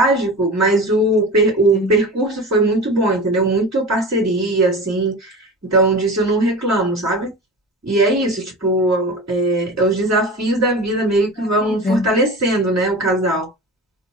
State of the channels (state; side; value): normal; both; correlation 0.32